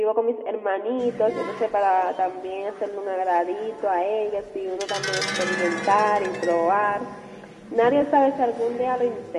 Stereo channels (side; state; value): both; identical; correlation 1.00